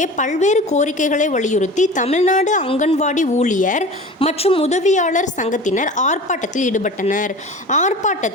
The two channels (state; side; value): normal; both; correlation 0.37